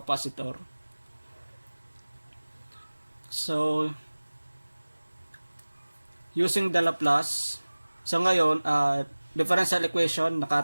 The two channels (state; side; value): inverted; both; correlation -1.00